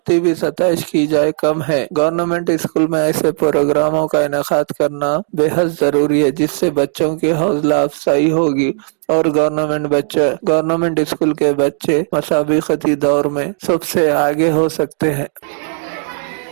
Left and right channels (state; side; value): silent; left; 69 dB below the other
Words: भी सतह की जाए कम है। गवर्नमेंट स्कूल में ऐसे प्रोग्रामों का इनेकाद करना बेहद जरूरी है, जिससे बच्चों की हौसला अफजाई होगी और गवर्नमेंट स्कूल के बच्चे मसाबकती दौर में सबसे आगे हो सकते हैं।